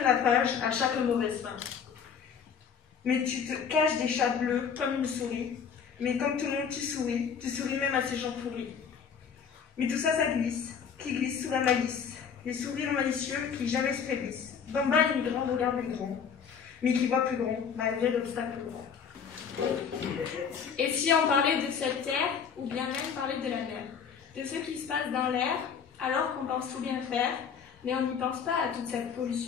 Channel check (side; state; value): right; quieter; 6.9 dB